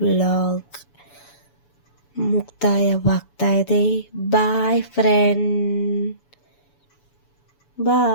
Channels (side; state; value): right; late; 7.0 ms